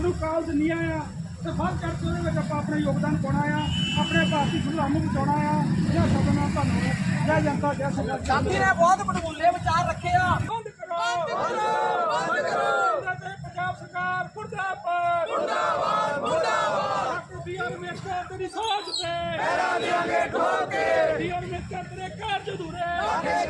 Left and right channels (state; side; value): identical; both; correlation 1.00